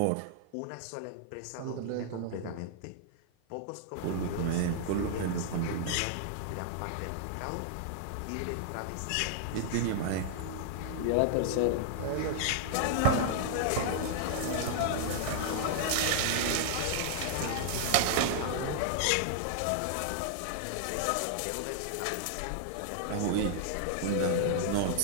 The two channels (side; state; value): both; different; correlation -0.01